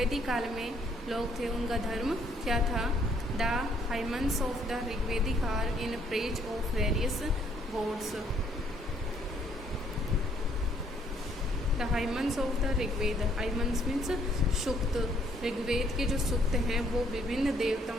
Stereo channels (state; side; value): normal; both; correlation 0.66